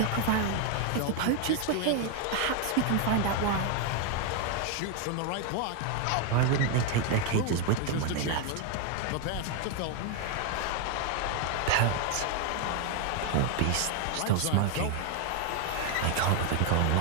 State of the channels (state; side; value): different; both; correlation 0.01